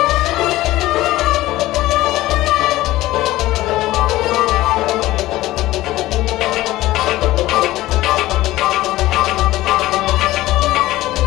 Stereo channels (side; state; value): right; quieter; 16.8 dB